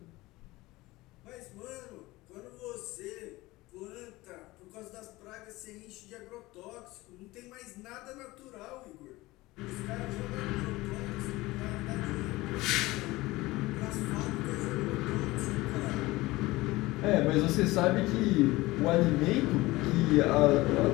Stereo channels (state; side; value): quieter; right; 19.8 dB